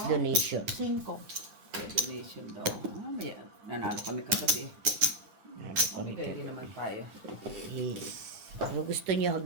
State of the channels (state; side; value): late; left; 9.9 ms